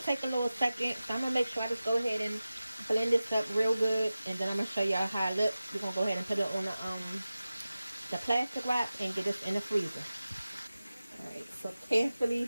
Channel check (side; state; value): both; inverted; correlation -0.96